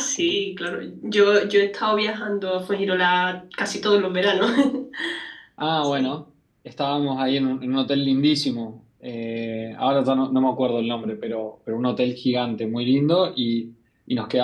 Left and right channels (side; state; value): both; identical; correlation 1.00